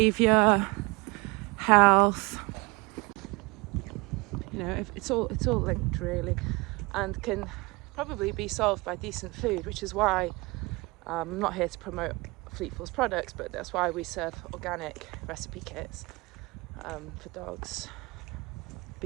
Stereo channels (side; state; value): left; quieter; 25.1 dB